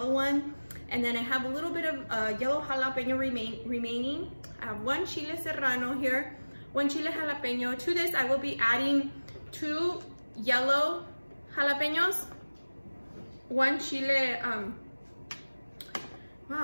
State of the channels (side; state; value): both; inverted; correlation -1.00